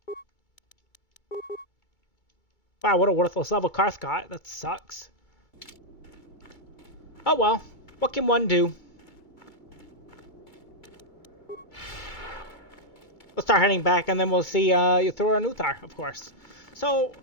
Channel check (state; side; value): late; right; 2.3 ms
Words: Wow, what a worthless level Karth got. That sucks. Oh well. What can one do? We'll start heading back, and then we'll see Uthar and Uthar, of course. So,